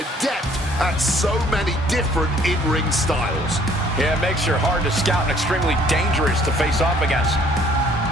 at so many different in-ring styles. Yeah, it makes her hard to scout and extremely dangerous to face off against.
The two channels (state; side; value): normal; both; correlation 0.59